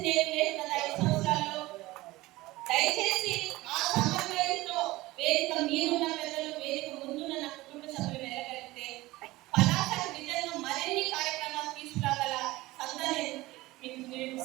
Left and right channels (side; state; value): left; quieter; 19.2 dB